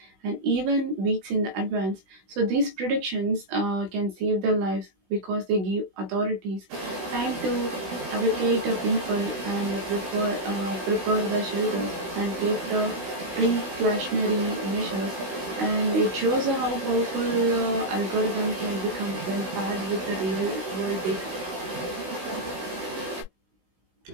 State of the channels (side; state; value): left; late; 16 ms